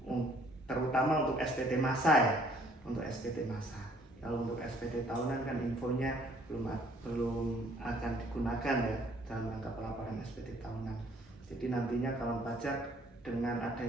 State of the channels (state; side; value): normal; both; correlation 0.61